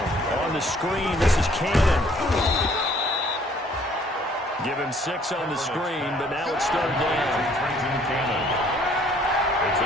On the screen, this is Cannon. Give him 6 on the screen, but now it's third down. It's a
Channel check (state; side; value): normal; both; correlation 0.60